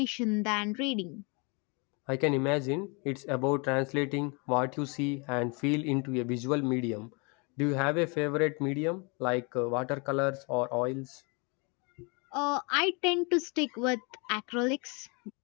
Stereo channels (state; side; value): quieter; right; 31.9 dB